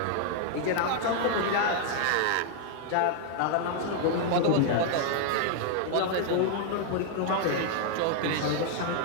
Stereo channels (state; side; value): different; both; correlation 0.00